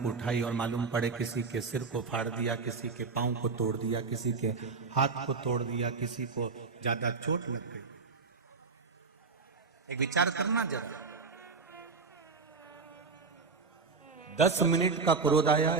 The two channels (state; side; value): quieter; left; 4.7 dB